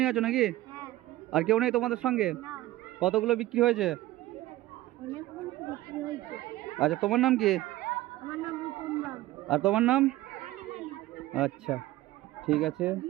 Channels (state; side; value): quieter; left; 16.5 dB